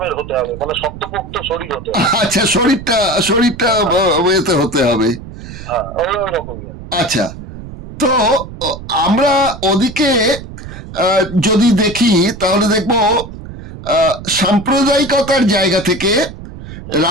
হতে হবে, মানে শক্তপোক্ত শরীর হতে হবে। আচ্ছা, শরীরটা এতে হতে হবে। হ্যাঁ, ওই রকমই। আচ্ছা, তো আমরা ওদিকে যদি দেখি তাহলে দেখবো সাম্প্রদায়িকতার জায়গা থেকে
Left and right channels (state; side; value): noise; right; rumble, 13 dB below the sound